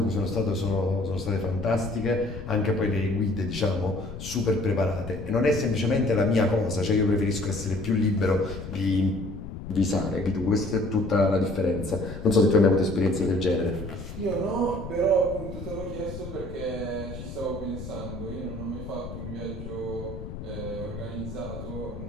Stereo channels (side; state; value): left; noise; rumble, 10 dB below the sound